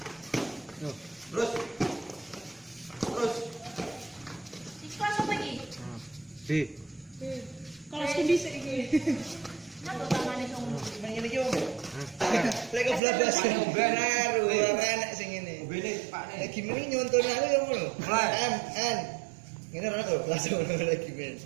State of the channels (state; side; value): drops out; left; at 13.0 s